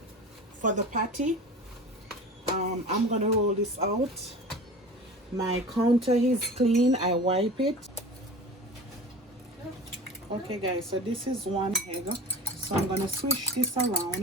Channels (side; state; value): both; normal; correlation 0.35